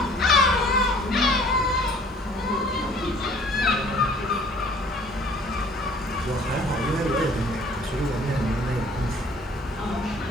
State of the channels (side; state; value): both; normal; correlation 0.54